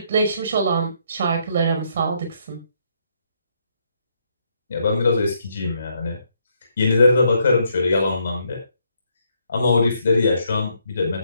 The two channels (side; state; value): both; inverted; correlation -0.73